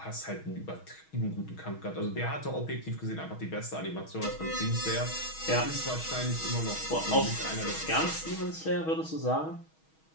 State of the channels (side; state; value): right; late; 6.3 ms